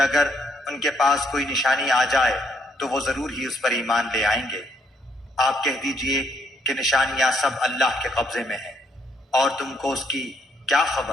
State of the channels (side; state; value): both; normal; correlation 0.72